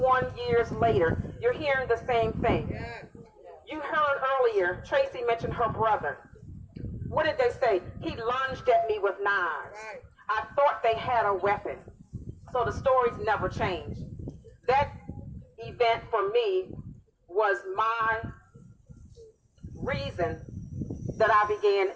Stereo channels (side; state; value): both; identical; correlation 1.00